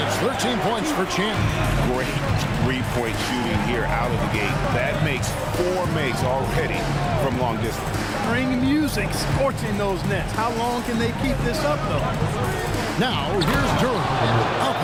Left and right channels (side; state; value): both; identical; correlation 1.00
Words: it's 13 points for Champ. Great three-point shooting here out of the gate. That makes 4 makes already from long distance. Ring music scorching those nets. How long can they keep this up, though? Now, here's Durham. Up